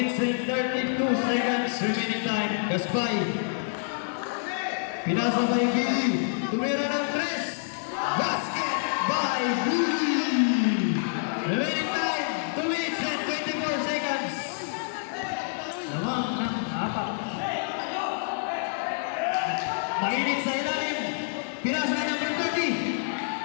and 32 seconds remaining time. Gaspay. Pinasa kay Billy. Tumira ng 3. Basket by Billy. Remaining time. 2 minutes and 24 seconds. Lamang ng 4. Mainit sa ilalim. Pinasa kay number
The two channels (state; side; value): silent; right; digital silence